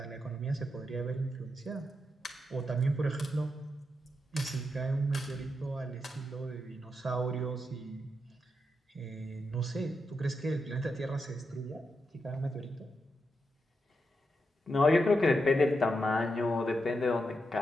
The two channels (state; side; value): normal; both; correlation 0.85